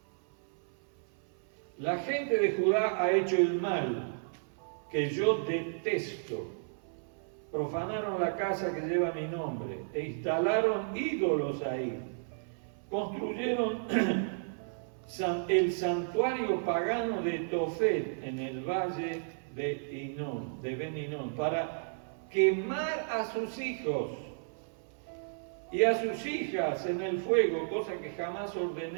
La gente de Judá ha hecho el mal que yo detesto. Profanaron la casa que lleva mi nombre e instalaron ídolos ahí. Construyeron el santuario pagano de Tofet en el valle de Ben-Hinnom para quemar a sus hijos y a sus hijas en el fuego, cosa que jamás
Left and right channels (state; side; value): silent; left; 56 dB below the other